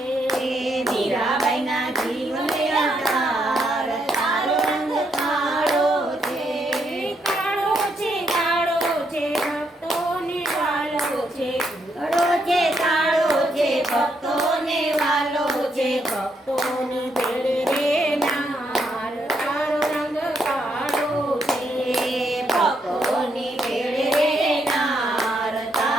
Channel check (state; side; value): normal; both; correlation 0.76